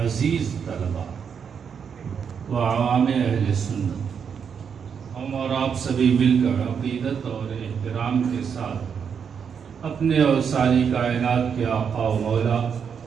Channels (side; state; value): left; quieter; 7.0 dB